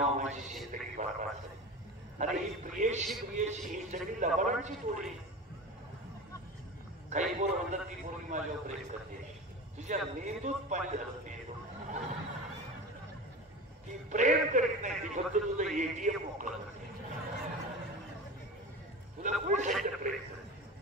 माझी जिंदगी बरबाद झाली. अरे ही प्रियशी ही सगळी लबाडांची जोडी. काही पोर म्हणतात ती पोरगी माझ्यावर प्रेम करते, तुझ्या मेंदूत पाणी झालं. मेंदू ती प्रेम करीत नाही, ती फक्त तुझं एटीएम मोकळं करते. तुला कोण सांगितलं प्रेम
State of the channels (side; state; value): both; normal; correlation 0.30